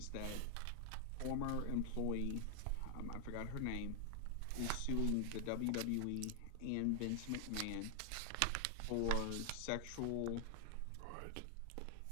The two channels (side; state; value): both; different; correlation 0.00